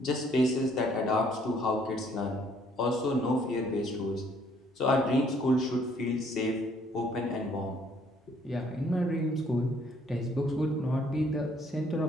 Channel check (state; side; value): normal; both; correlation 0.64